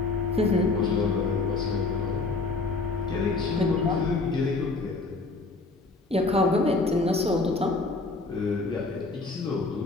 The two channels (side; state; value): right; quieter; 3.5 dB